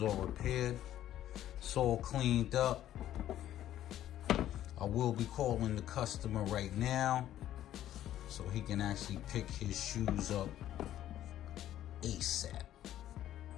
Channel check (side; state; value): right; quieter; 12.3 dB